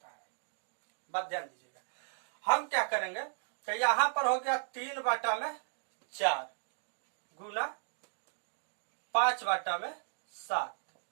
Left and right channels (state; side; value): silent; left; digital silence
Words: है। बात ध्यान दीजिएगा। हम क्या करेंगे कि यहां पर हो गया 3 बटा में 4 गुना 5 बटा में